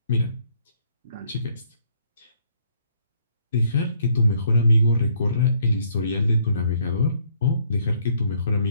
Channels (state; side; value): inverted; both; correlation -0.66